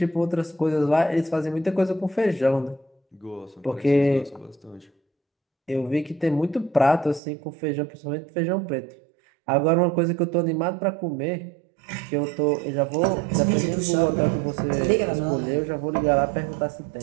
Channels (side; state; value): left; drops out; at 7.2 s